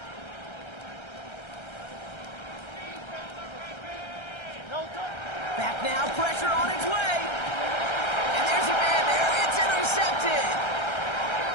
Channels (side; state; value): right; late; 1.3 ms